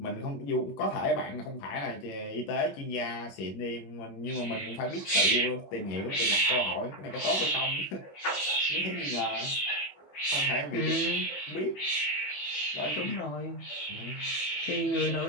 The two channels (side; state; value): right; late; 20 ms